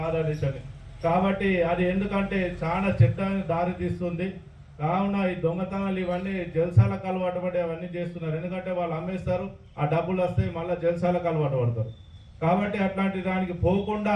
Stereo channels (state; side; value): identical; both; correlation 1.00